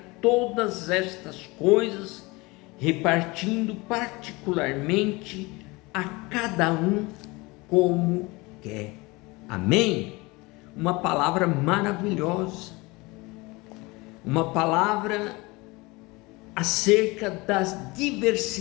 todas estas coisas, repartindo particularmente a cada um como quer. Amém? Uma palavra maravilhosa. Uma palavra acerca da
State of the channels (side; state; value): right; quieter; 24.0 dB